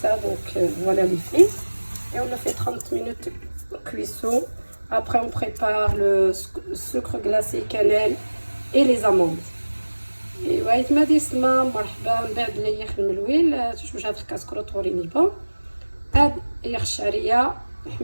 donc voilà les filles. Et on le fait 30 minutes cuisson. Après on prépare le sucre glacé, cannelle et les amandes. ايوا يتما ديسما مرحبا من بعد اللي يخدم الويل شوف هاد الكاسكروط وريني با هاد يخ الشعريه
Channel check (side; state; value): both; inverted; correlation -1.00